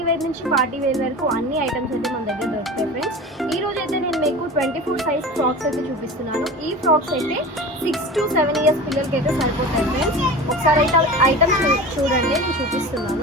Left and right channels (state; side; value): normal; both; correlation 0.33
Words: వేర్ నుంచి పార్టీ వేర్ వరకు అన్ని ఐటమ్స్ అయితే మన దగ్గర దొరుకుతాయి ఫ్రెండ్స్. ఈ రోజు అయితే నేను మీకు 24 సైజ్ ఫ్రాక్స్ అయితే చూపిస్తున్నాను. ఈ ఫ్రాక్స్ అయితే 6 to 7 ఇయర్స్ పిల్లలకి అయితే సరిపోతాయి ఫ్రెండ్స్. ఒకసారి అయితే ఐటమ్స్ చూడండి, నేను